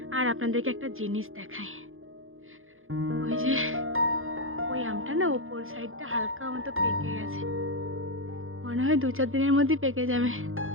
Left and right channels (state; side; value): late; left; 0.60 ms